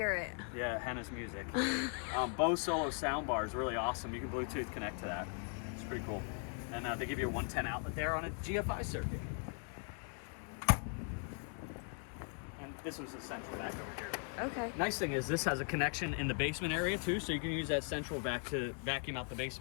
it. Yeah, Hannah's music. Bose Solo sound bar is really awesome. You can Bluetooth connect to that. It's pretty cool. And they give you a 110 outlet there on a GFI circuit. And this was the central vac over here. Okay. Nice thing is this has a connection in the basement area too, so you can use that central vac to vacuum out the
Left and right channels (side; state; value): right; quieter; 39.7 dB